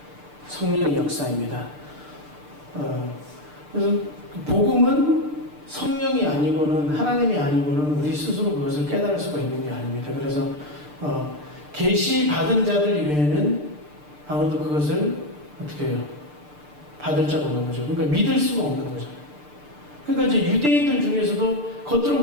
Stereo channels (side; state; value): left; late; 6.7 ms